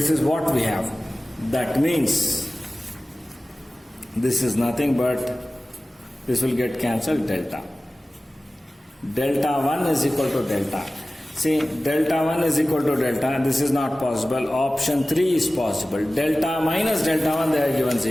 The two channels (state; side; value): normal; both; correlation 0.96